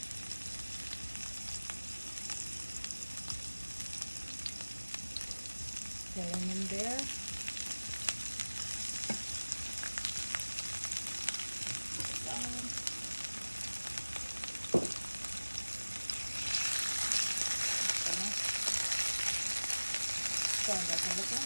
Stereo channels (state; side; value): inverted; both; correlation -1.00